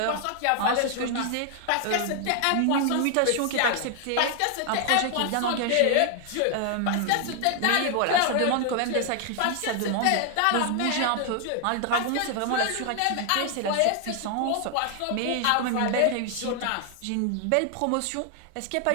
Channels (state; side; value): different; both; correlation 0.00